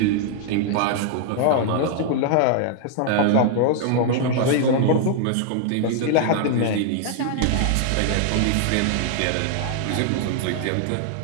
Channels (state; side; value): different; both; correlation 0.00